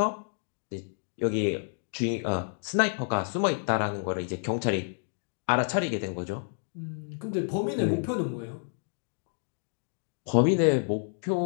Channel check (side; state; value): right; silent; digital silence